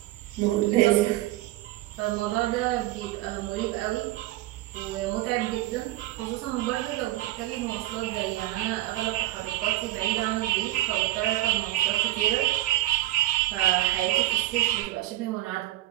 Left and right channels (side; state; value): left; quieter; 16.2 dB